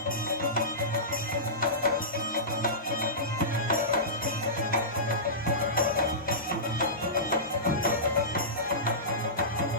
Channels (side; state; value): both; normal; correlation -0.19